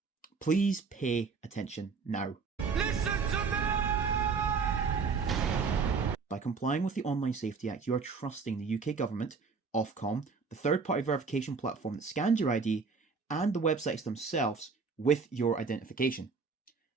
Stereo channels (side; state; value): left; quieter; 5.0 dB